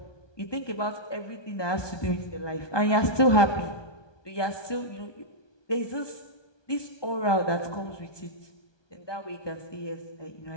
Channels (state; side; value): late; right; 1.2 ms